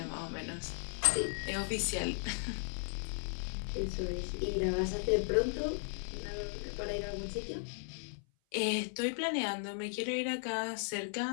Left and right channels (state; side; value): silent; right; 54 dB below the other